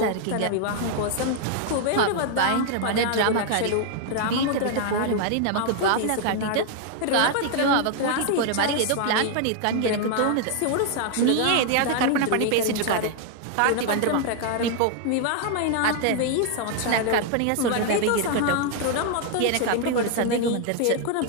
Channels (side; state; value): both; different; correlation 0.00